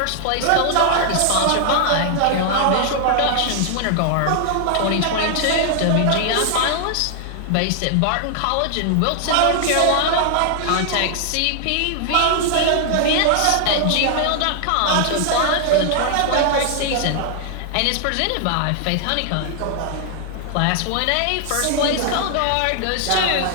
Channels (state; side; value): different; both; correlation 0.00